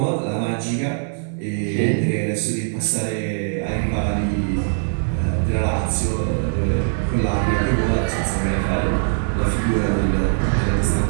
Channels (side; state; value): left; silent; digital silence